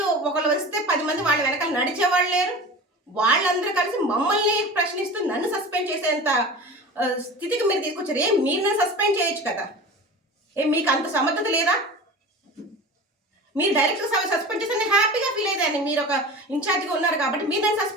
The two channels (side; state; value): both; normal; correlation 0.35